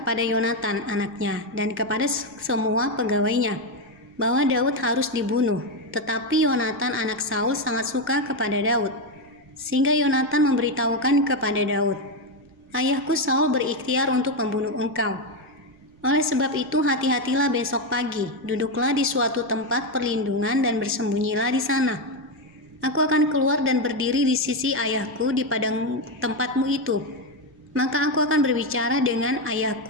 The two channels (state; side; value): noise; right; rumble, 29 dB below the sound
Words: Yonatan anaknya dan kepada semua pegawainya bahwa Daud harus dibunuh. Tetapi Yonatan anak Saul sangat suka kepada Daud, sehingga Yonatan memberitahukan kepada Daud, "Ayahku Saul berikhtiar untuk membunuh engkau. Oleh sebab itu hati-hatilah besok pagi, duduklah di suatu tempat perlindungan dan bersembunyilah di sana. Aku akan keluar dan berdiri di sisi ayahku di padang tempatmu itu. Maka aku akan berbicara dengan